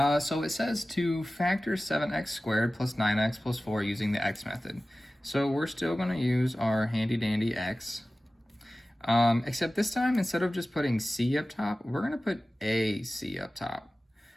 it says to factor 7x squared plus 9x plus 4 using the x method. So we're still going to use our handy dandy x, except this time instead of just putting c up top, we're going to put ac up top.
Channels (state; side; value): normal; both; correlation 0.96